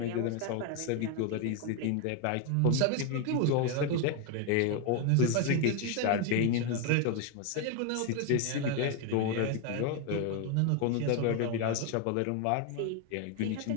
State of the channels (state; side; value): different; both; correlation 0.01